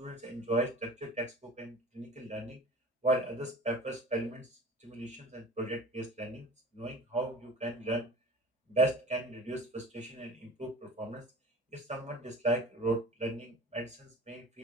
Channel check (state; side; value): normal; both; correlation 0.40